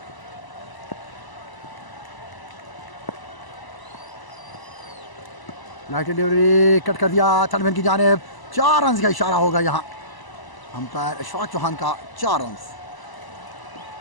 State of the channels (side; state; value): right; late; 1.0 ms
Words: लाइट डिलीवरी कट कर दिया थर्डमैन की जानिब, 4 रन का इशारा होगा यहाँ अंपायर अशफाक चौहान का। 4 रन